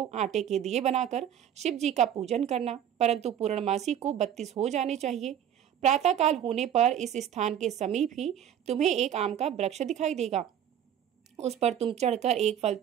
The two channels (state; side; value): quieter; left; 9.8 dB